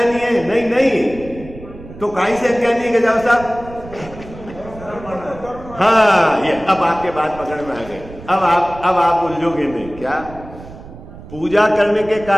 है? नहीं नहीं, तो काहे से अज्ञानी है गजाव साहब? हाँ, ये अब आपके बात पकड़ में आ गए। अब आप उलझोगे नहीं। क्या? पूजा करने के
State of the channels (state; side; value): noise; right; rumble, 16 dB below the sound